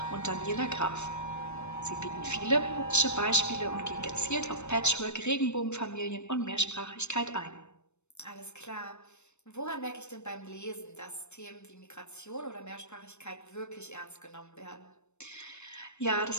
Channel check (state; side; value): late; right; 0.82 ms